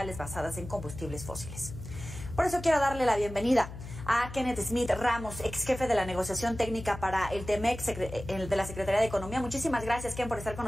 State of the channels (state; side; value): noise; left; hum, 11 dB below the sound